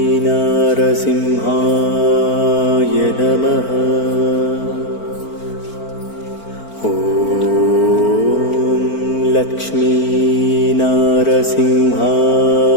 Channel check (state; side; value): late; right; 4.4 ms